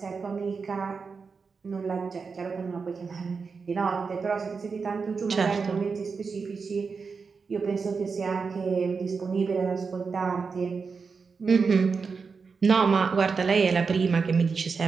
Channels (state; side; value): quieter; left; 5.1 dB